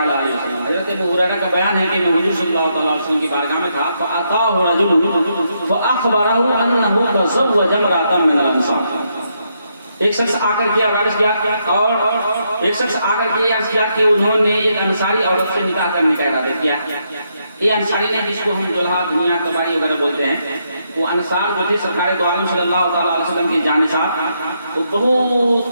علیہ وسلم. حضرت ابو ہریرہ کا بیان ہے کہ میں حضور صلی اللہ تعالیٰ علیہ وسلم کی بارگاہ میں تھا. فأتاه رجل فأخبره أنه تزوج امرأة من الأنصار. ایک شخص آ کر کے عرض کیا کہ انہوں نے ایک انصاری عورت سے نکاح کرنے کا ارادہ کیا. یہ انصاری نے جس کو ہم دلہا دنیا تباری وغیرہ بولتے ہیں، وہ انصار جو تھے سرکار دو عالم صلی اللہ تعالیٰ علیہ وسلم کے جانشار، وہ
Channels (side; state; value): both; inverted; correlation -0.78